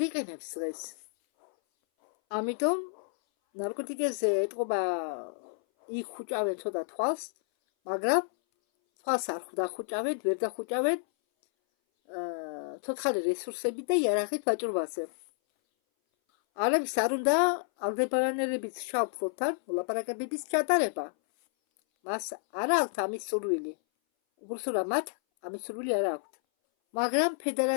იყენებს დღეს. ამიტომ ნარკოტიკებზე ეტყობა იქ ხუჭავენ ცოტა თვალს, მაგრამ თვალს არ დახუჭავენ, ვერ დახუჭავენ ცოცხალი რესურსები და იერარქიით ვაჭრობაზე. ალებს არ უნდა ალდებარანელების შავ ფლოტთან მოლაპარაკებების ჩატარება. მას არ აქვთ ამის სურვილი. უბრალოდ მათ ამის სურვილი არ აქვთ. მაგრამ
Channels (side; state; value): right; silent; 58 dB below the other